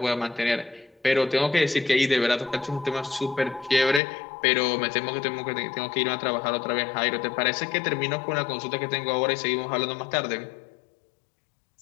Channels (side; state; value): right; drops out; at 4.0 s